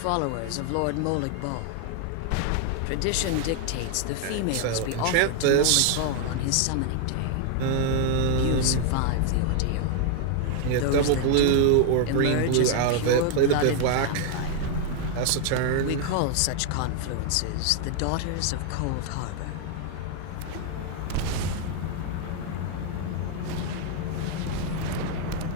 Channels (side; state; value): both; different; correlation 0.00